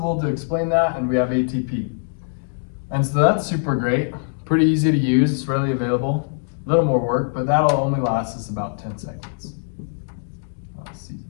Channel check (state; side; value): silent; right; digital silence